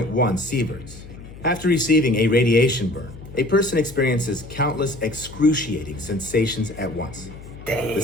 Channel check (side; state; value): left; noise; hum, 16 dB below the sound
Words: sieverts. After receiving a radiation burn, a person experiences countless excruciating sensations at once. The